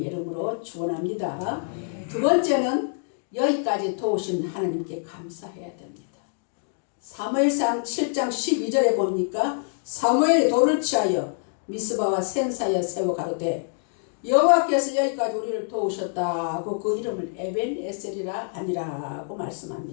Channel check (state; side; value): silent; right; digital silence